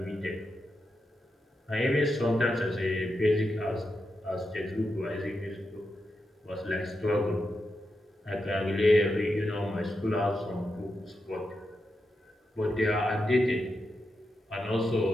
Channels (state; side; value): normal; both; correlation 0.87